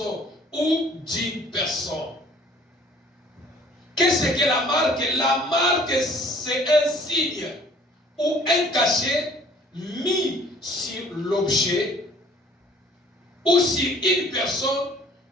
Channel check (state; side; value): normal; both; correlation 0.54